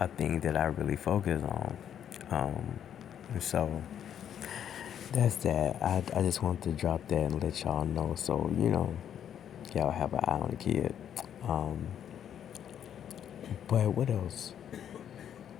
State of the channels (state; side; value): quieter; right; 9.4 dB